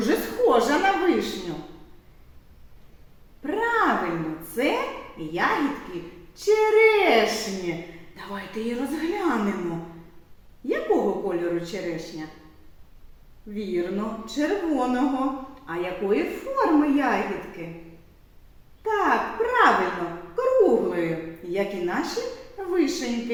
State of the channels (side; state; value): both; identical; correlation 1.00